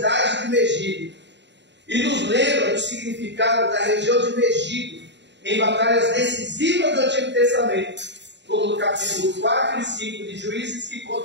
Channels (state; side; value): late; left; 0.52 ms